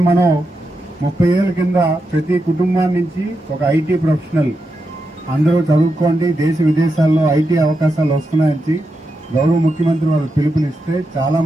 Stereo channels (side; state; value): both; normal; correlation 0.86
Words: మనం 30 ఏళ్ల కింద ప్రతి కుటుంబాన్ని నుంచి ఒక ఐటీ ప్రొఫెషనల్ అందరూ చదువుకోండి, దేశ విదేశాల్లో ఐటీ అవకాశాలు వస్తున్నాయని గౌరవ ముఖ్యమంత్రి వాళ్ళు పిలుపునిస్తే చాలా